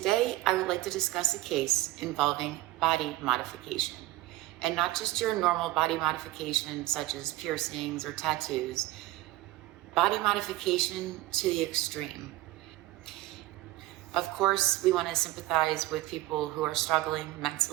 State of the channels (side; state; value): left; quieter; 17.3 dB